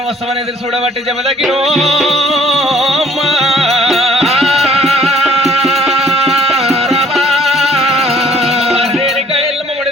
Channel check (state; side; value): normal; both; correlation 0.57